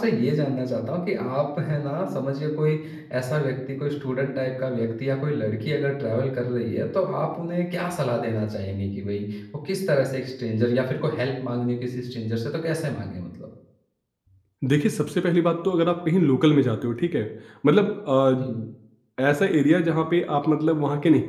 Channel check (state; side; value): identical; both; correlation 1.00